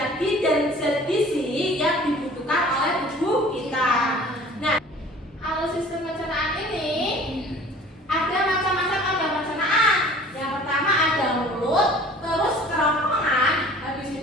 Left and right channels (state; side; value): normal; both; correlation 0.48